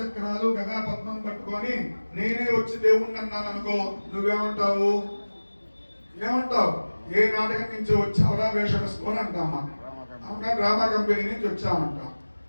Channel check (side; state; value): both; inverted; correlation -1.00